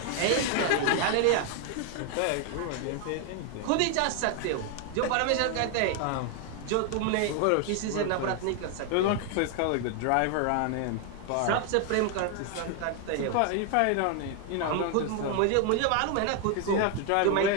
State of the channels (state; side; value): different; both; correlation 0.01